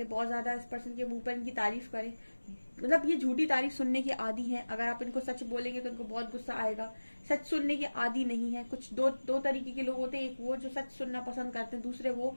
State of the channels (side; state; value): both; inverted; correlation -1.00